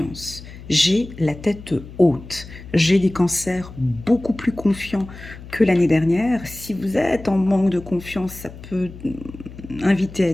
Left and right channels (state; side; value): noise; left; hum, 15 dB below the sound